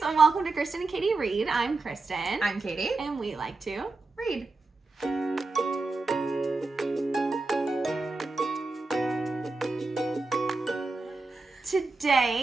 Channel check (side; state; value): left; quieter; 3.5 dB